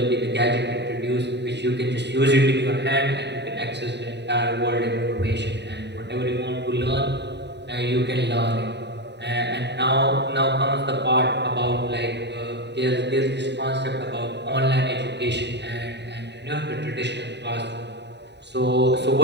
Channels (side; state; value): left; late; 0.50 ms